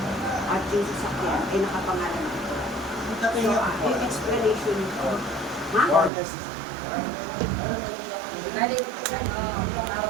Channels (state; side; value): drops out; left; at 6.1 s